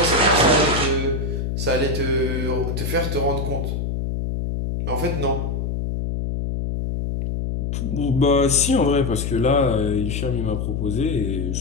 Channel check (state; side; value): noise; left; hum, 2 dB below the sound